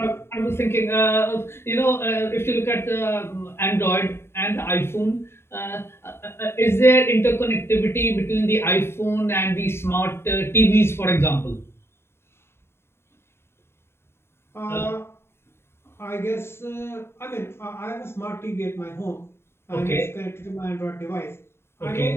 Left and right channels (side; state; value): right; late; 0.12 ms